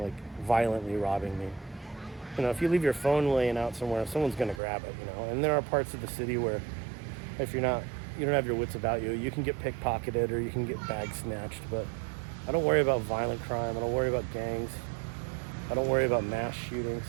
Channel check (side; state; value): left; drops out; at 4.6 s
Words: like violently robbing me. You know, if you leave your phone laying out somewhere, someone's gonna grab it, you know. And there are parts of the city where if you don't have your wits about you, you can get pickpocketed or you can get bag snatched, but I don't worry about violent crime, I don't worry about gangs, I don't worry about mass shootings.